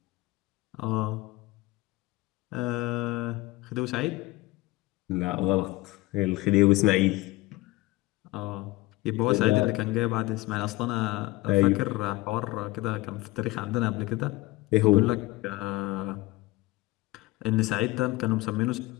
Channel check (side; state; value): right; quieter; 20.3 dB